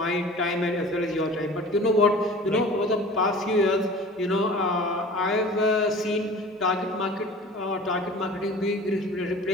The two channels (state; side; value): normal; both; correlation 0.42